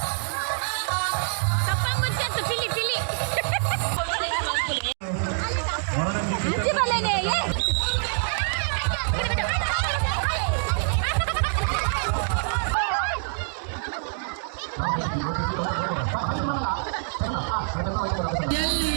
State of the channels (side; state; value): left; silent; 61 dB below the other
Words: ತಪ್ಪಂಗುಚ್ಚಂತು ಪಿಲಿ ಪಿಲಿ